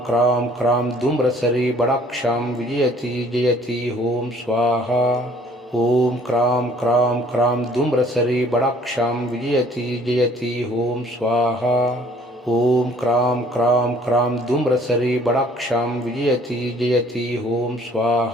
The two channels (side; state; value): both; normal; correlation 0.57